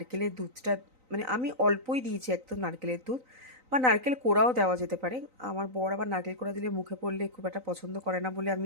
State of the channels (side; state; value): left; late; 3.9 ms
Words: দুধটা, মানে আমি অল্পই দিয়েছি একদম নারকেলের দুধ, বা নারকেল কোড়াও দেওয়া যেতে পারে। আমার বর আবার নারকেল কোড়া দিলে মুখে পড়লে খুব একটা পছন্দ করে না বলে